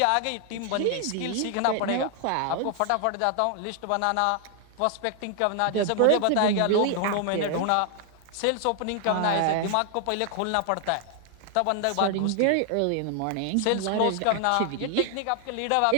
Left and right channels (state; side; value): different; both; correlation 0.00